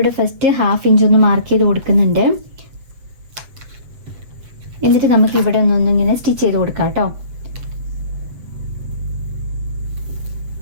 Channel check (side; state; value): left; late; 7.8 ms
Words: ഫസ്റ്റ് 1/2 ഇഞ്ച് ഒന്ന് മാർക്ക് ചെയ്ത് കൊടുക്കുന്നുണ്ട്. എന്നിട്ട് നമുക്ക് ഇവിടെ ഒന്നിങ്ങനെ സ്റ്റിച്ച് ചെയ്ത് കൊടുക്കാം കേട്ടോ.